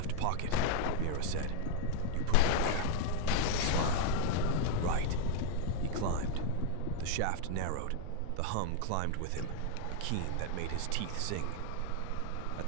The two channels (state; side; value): different; both; correlation 0.00